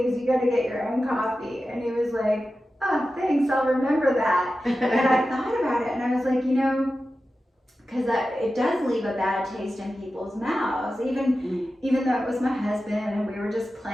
You got to get your own coffee. And he was like, oh, thanks. I'll remember that. And I thought about it and I was like, because it does leave a bad taste in people's mouths, even though it was my husband and we were just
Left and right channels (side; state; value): both; normal; correlation 0.93